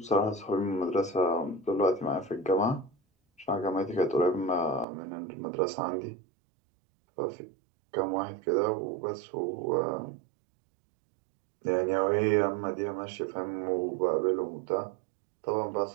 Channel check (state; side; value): drops out; left; at 4.9 s